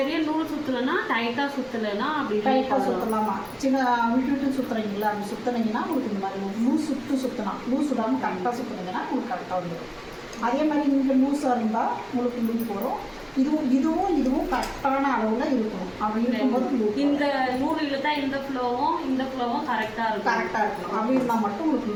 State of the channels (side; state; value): both; identical; correlation 1.00